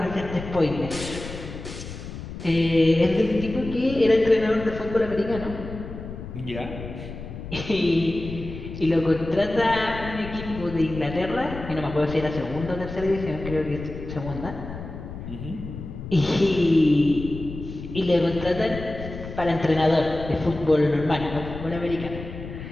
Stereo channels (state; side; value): noise; left; rumble, 10 dB below the sound